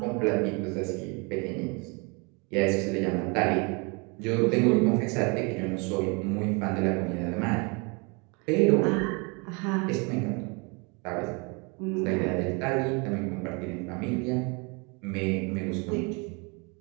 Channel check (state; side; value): quieter; left; 31.1 dB